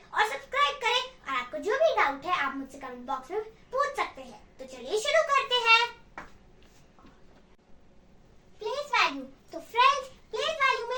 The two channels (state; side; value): identical; both; correlation 1.00